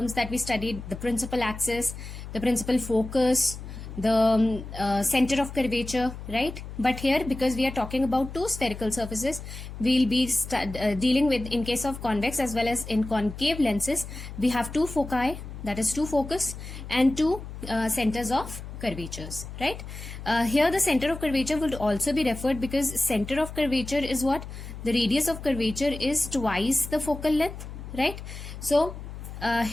that we studied: the principal axis, the principal focus, the center of curvature, right? But here, because we are talking about two spherical surfaces, we'll be dealing with, in case of convex as well as in concave lenses, we have two foci, that is two focus, and two centers of curvatures, right? Here the center of curvature would also be referred, because center of curvature is what? The radius of curvature is twice the focal length, right? So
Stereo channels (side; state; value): left; noise; hum, 11 dB below the sound